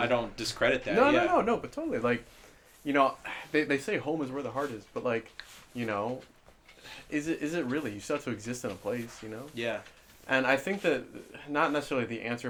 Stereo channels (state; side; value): identical; both; correlation 1.00